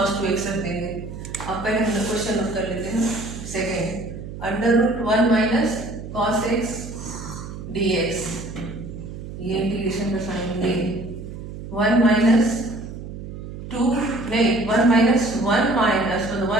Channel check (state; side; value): noise; right; hum, 10 dB below the sound